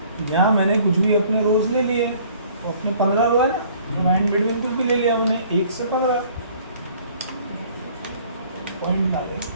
यहाँ मैंने कुछ भी अपने रोज ले लिए, तो अपने 15 रो है ना, तो एंड बिटवीन कुछ भी ले लिया मैंने 1 से 15 पॉइंट डाले,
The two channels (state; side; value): inverted; both; correlation -0.56